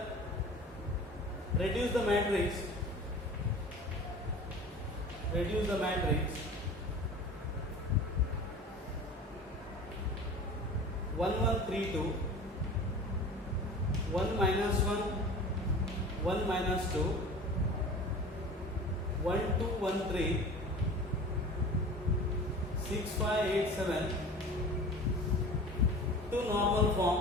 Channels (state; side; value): normal; both; correlation 0.39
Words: Reduce the matrix. Reduce the matrix 1 1 3 2 1 minus 1 1 minus 2 1 2 1 3 6 5 8 7